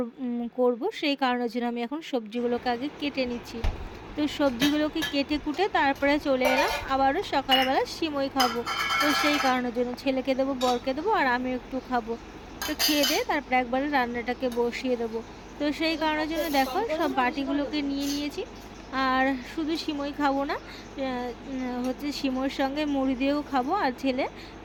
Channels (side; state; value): both; identical; correlation 1.00